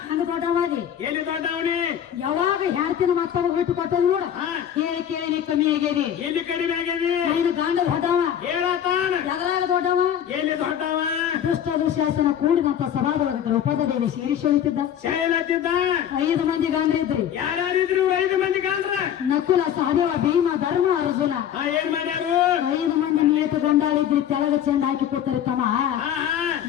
ಹಂಗ ದೊಡ್ಡವಾದಿ. ಎಲ್ಲಿ ದೊಡ್ಡವನಿ? ಯಾವಾಗ ಹೇಳ್ತೀನಿ ಮತ್ತೊಬ್ಬ ಬಿಟ್ಟು ಕೊಟ್ಟದ್ ನೋಡ. ಹೇಳಿ ಕೇಳಿ ನೀ ಕಮ್ಮಿ ಆಗ್ಯದಿ. ಎಲ್ಲಿ ಕಡಿಮೆ ಆಗ್ಯದಿ? ನೀನು ಗಂಡ ದೊಡ್ಡವ. ಹೇಳತಾನ ಎದ್ರಾಗ ದೊಡ್ಡವ? ಎಲ್ಲಿ ದೊಡ್ಡವ? ದುಷ್ಟ ದುಶ್ಯಾಸನ ಕೂಡಿದಂತ ಸಭಾದೊಳಗ ದ್ರೌಪದ ದೇವಿ ಶೀರಿಷಳಿತಿದ್ದ. ಶೈಲತ್ತಿದ್ದ 5 ಮಂದಿ ಗಂಡ್ರಿದ್ರಿ. ಯಾರ್ಯಾರಿದ್ರು? 5 ಮಂದಿ ಗಂಡ್ರ. ನಕುಲ ಸಹದೇವ ಭೀಮ ಧರ್ಮ ಅರ್ಜುನ. ಏನ್ ಮಾಡ್ಯಾರು? 5 ಮಂದಿ ನೇತು ಗಂಡಾಳಿದ್ರಿ. ತೆಳಗ ಚೆಂದ ಹಾಕಿ ಕೊಡ್ತಾರೆ ತಮ್ಮ.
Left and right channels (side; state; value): right; quieter; 9.7 dB